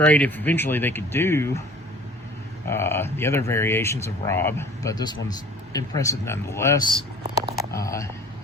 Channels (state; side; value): normal; both; correlation 0.47